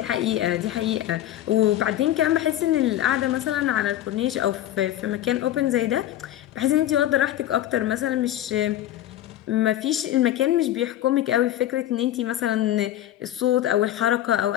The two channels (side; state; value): right; quieter; 12.9 dB